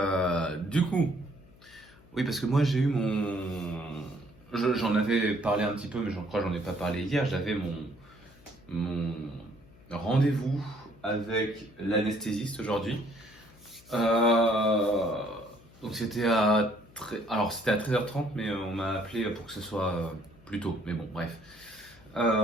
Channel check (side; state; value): left; noise; hum, 25 dB below the sound